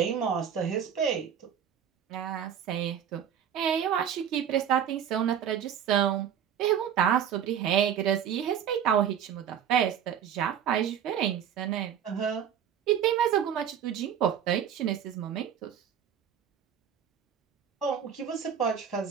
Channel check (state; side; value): quieter; left; 8.8 dB